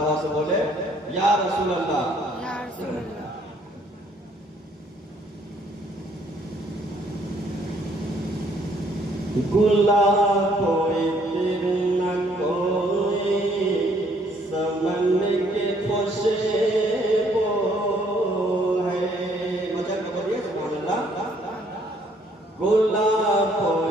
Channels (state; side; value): normal; both; correlation 0.65